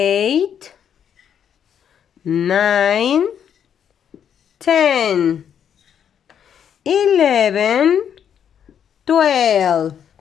9, 10, 11, 12.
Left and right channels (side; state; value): right; quieter; 8.6 dB